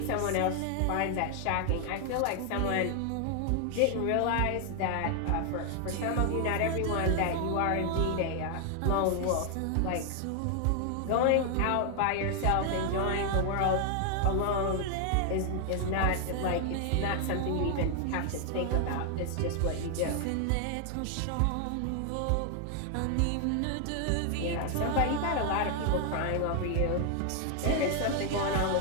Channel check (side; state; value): both; different; correlation 0.00